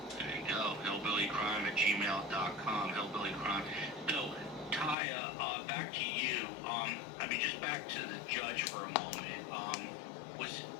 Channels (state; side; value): drops out; right; at 5.0 s